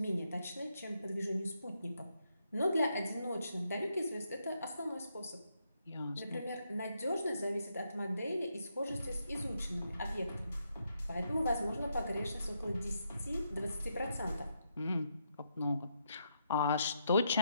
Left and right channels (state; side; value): inverted; both; correlation -0.79